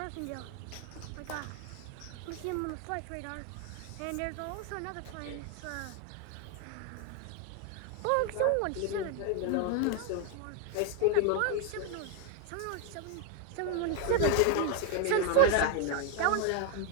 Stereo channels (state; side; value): different; both; correlation 0.01